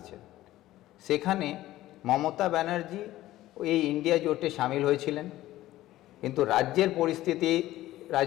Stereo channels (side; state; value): right; quieter; 15.4 dB